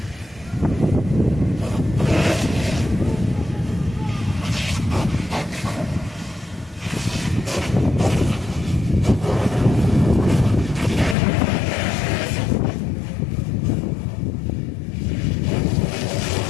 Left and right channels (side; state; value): right; drops out; at 11.2 s